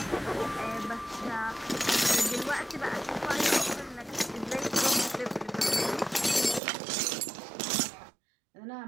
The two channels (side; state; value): left; drops out; at 6.6 s